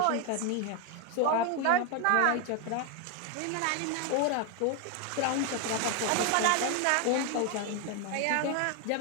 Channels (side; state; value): both; different; correlation 0.01